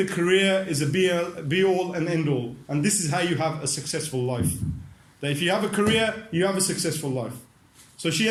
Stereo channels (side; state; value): both; identical; correlation 1.00